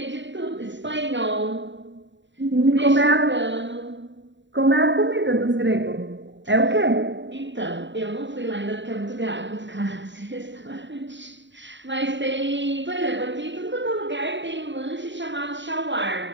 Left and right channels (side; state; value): left; late; 0.53 ms